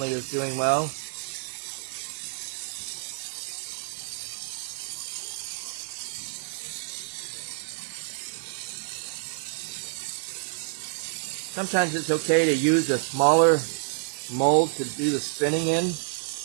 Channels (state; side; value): silent; left; digital silence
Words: is doing well. Sometimes it's okay to use a smaller mold to do the spinning in.